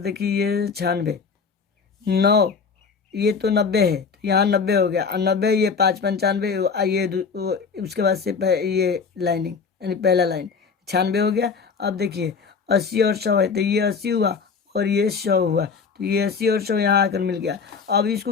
देखिए ये 96, 9, ये तो 90 है तो यहाँ 90 हो गया, और 90 ये 5, 95, ये उसके बाद से ये लाइनिंग यानी पहला लाइन 96 हो गया। अब देखिए 80 और 100 है तो ये 80 हुआ और ये 100 हुआ, तो ये 80 और 100 यहाँ आकर मिल गया। अब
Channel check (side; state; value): right; quieter; 5.5 dB